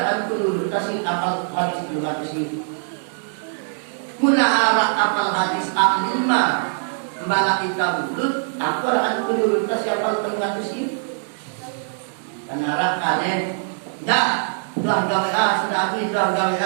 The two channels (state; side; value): silent; left; 64 dB below the other